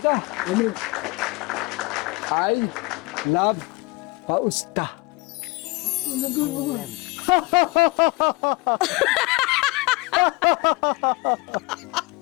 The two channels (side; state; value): right; quieter; 25.2 dB